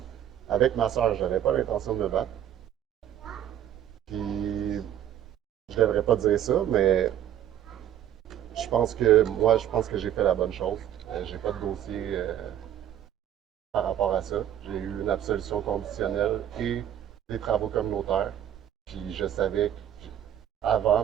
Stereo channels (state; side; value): quieter; left; 10.8 dB